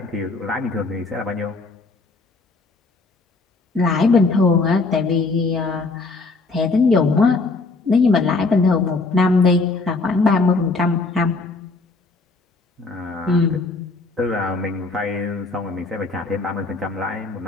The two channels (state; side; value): quieter; right; 3.6 dB